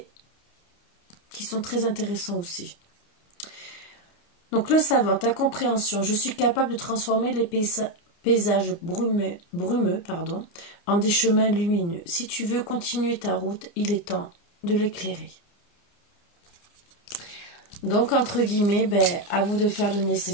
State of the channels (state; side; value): late; right; 30 ms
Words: qui sont très intéressants aussi. Donc le savant, ta compréhension. Je suis capable de transformer les paysages brumeux, en des chemins lumineux. Si tu veux continuer ta route, il est temps de l'éclairer. Donc, entre guillemets, à vous de faire le